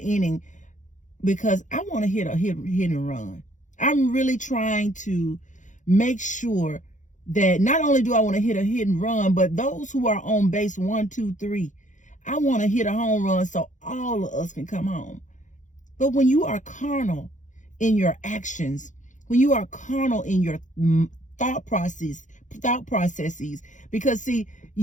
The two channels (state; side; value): late; right; 0.36 ms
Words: because I want to hit and run. I'm really trying to make sure that not only do I want to hit a hit and run, but those who are on base 1, 2, 3, I want to hit a home run so all of us can come home. But when you are carnal in your actions, when you are carnal in your thought processes, because see,